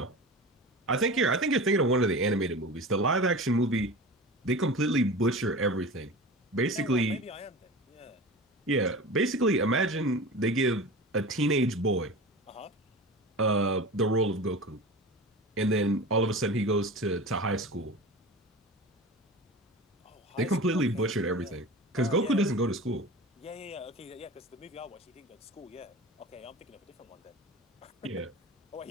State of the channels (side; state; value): both; normal; correlation 0.33